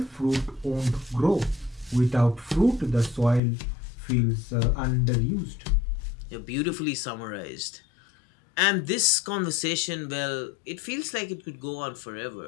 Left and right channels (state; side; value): drops out; right; at 3.4 s